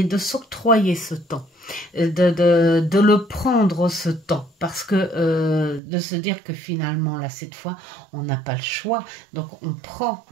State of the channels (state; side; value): drops out; left; at 5.8 s